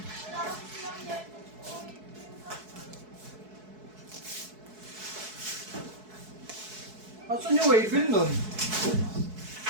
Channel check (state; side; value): late; left; 4.6 ms